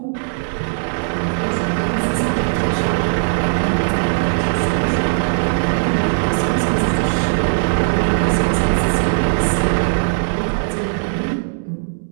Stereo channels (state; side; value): silent; left; 67 dB below the other